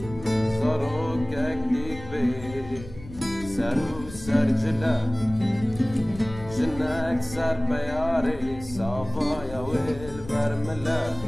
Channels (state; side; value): noise; left; rumble, 15 dB below the sound